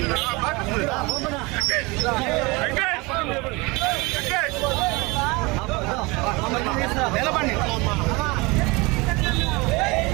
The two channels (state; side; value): quieter; left; 25.1 dB